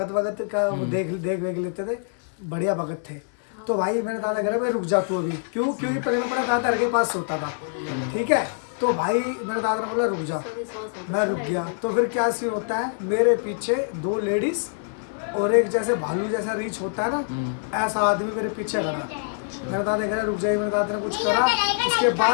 का देख लेते थे, बढ़िया भगत थे। तो भाई मेरे दादा कह रहे भाई रुक जा तू अभी, क्योंकि पहले मैं दादा के पास सोता था। ठीक है, तो भाई मेरे दादा ने बोला रुक जा, मैं रुक गया। तो फिर क्या सीन होता है, मेरे पीछे 2 लेडीज और एक जैसे भालू जैसा रीच होता है ना, ऐसा आदमी मेरे पीछे खड़ा। मेरे दादा कह रहा रुक जाइए, मेरे दादा ने कुछ करा, उसके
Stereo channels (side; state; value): right; silent; digital silence